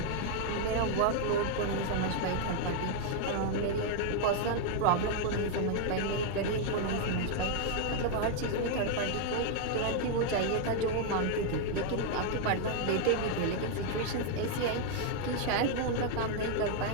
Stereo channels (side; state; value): both; different; correlation 0.00